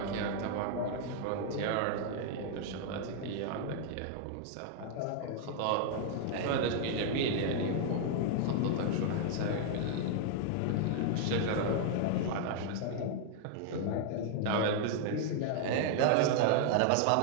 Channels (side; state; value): both; different; correlation 0.00